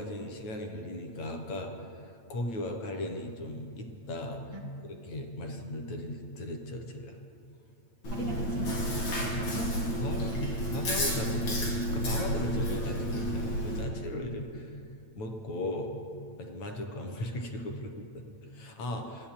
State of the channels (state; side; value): late; right; 8.9 ms